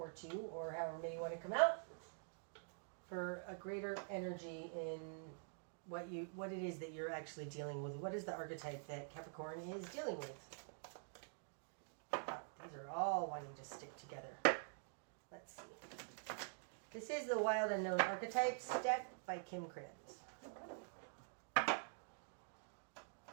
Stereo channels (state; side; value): silent; left; digital silence